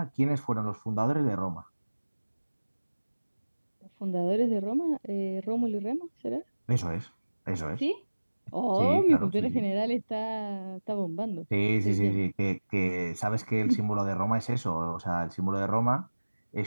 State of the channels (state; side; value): inverted; both; correlation -1.00